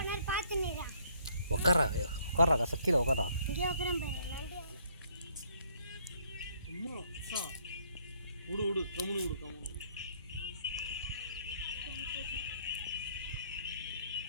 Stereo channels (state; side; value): inverted; both; correlation -0.66